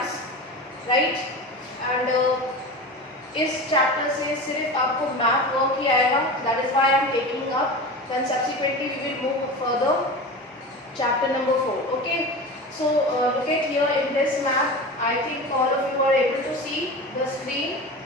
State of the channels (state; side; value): normal; both; correlation 0.30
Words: right? And इस chapter से सिर्फ आपको math work ही आएगा, that is why I am taking up. Then subsequently we will move further. Chapter number 4. Okay. So look at here in this map. I think all of you are able to see the screen.